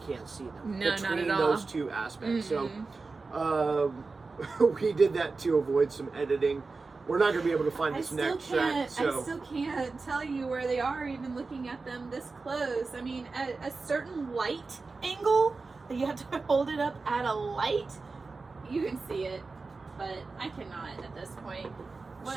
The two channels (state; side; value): quieter; left; 4.0 dB